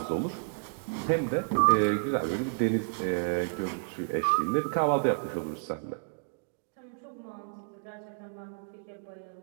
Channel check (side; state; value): left; silent; digital silence